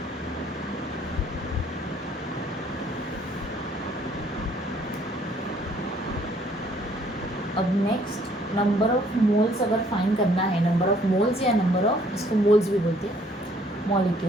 अब नेक्स्ट नंबर ऑफ मोल्स अगर फाइंड करना है. नंबर ऑफ मोल्स या नंबर ऑफ, इसको मोल्स भी बोलते हैं,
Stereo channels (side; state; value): both; normal; correlation 0.62